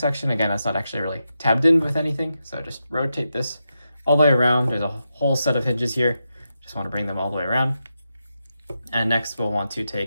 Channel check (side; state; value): both; inverted; correlation -0.87